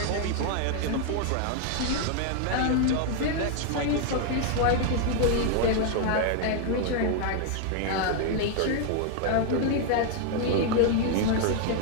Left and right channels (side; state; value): both; different; correlation 0.00